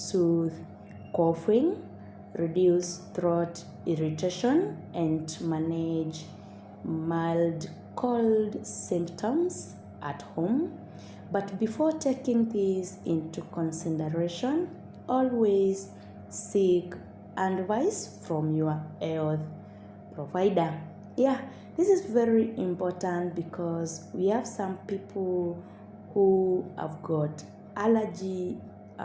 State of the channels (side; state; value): both; identical; correlation 1.00